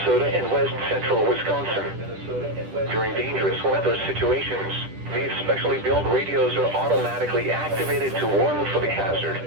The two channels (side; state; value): left; late; 10 ms